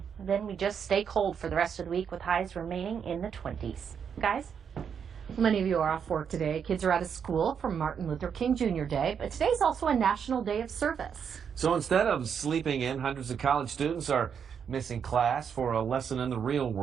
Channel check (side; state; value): left; quieter; 7.3 dB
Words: Then we just stay cold for the rest of the week with highs remaining in the 20s. Guys? Many of you are off work today. Kids are out of school for Martin Luther King Jr. Day, but today's also a National Day of Service. So instead of sleeping in, hundreds of college students are missing class for a lesson in the real